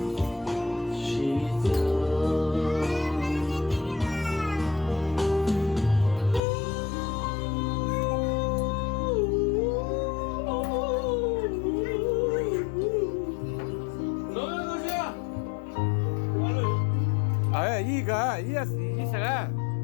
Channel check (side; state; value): right; drops out; at 6.4 s